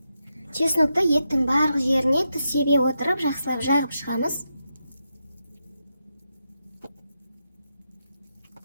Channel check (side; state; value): both; inverted; correlation -0.85